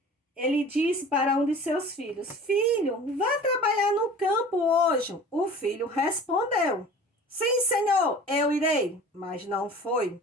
Ele disse para um de seus filhos: filho, vá trabalhar no campo hoje. O filho respondeu: sim, senhor, eu irei. Mas não foi.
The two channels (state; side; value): normal; both; correlation 0.42